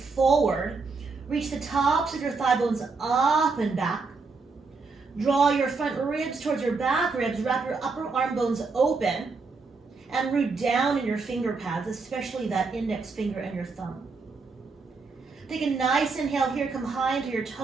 Reach the tops of your thigh bones up and back. Draw your front ribs towards your back ribs. Wrap your upper arm bones open and root down in your finger pads, especially that index finger and your thumb. Take a nice inhale here. Come high into your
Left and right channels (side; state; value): left; quieter; 4.3 dB